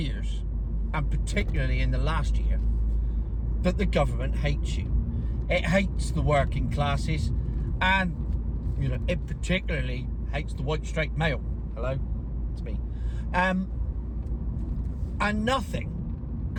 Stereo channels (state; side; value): identical; both; correlation 1.00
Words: and particularly in the last year, that the government hates you. It hates the working classes, and it particularly hates the white straight male. Hello, it's me. And nothing